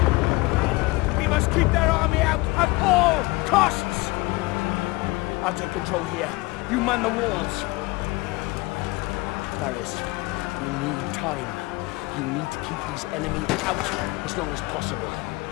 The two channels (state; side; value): quieter; right; 22.7 dB